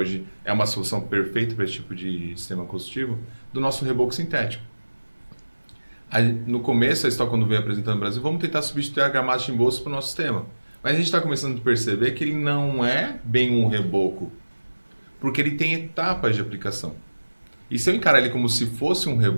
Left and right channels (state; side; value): inverted; both; correlation -1.00